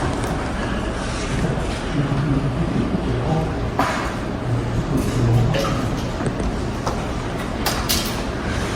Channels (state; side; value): identical; both; correlation 1.00